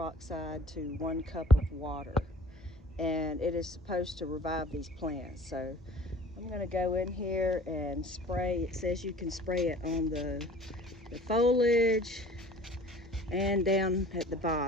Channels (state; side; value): normal; both; correlation 0.48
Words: to 1 cup of water. And it is supposed to revive these plants. So I'm going to go in here and spray. It says you can spray it on the foliage and down at the